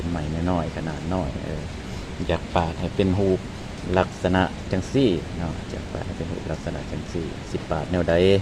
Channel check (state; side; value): identical; both; correlation 1.00